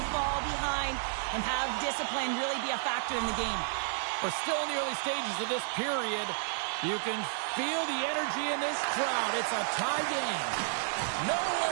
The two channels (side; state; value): left; silent; digital silence